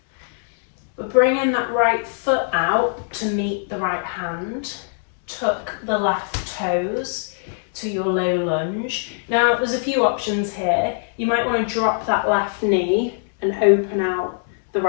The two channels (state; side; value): silent; right; digital silence